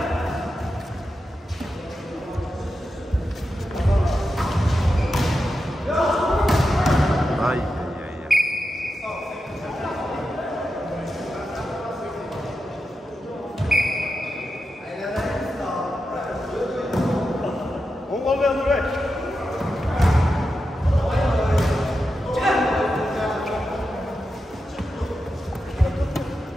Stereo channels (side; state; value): both; normal; correlation 0.89